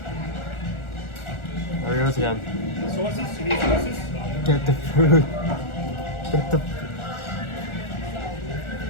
There he goes again. Sauces? You need sauces? Get the food.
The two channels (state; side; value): late; right; 1.4 ms